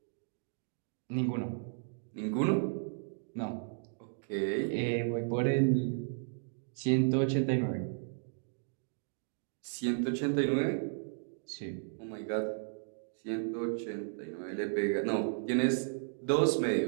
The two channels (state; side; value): silent; left; digital silence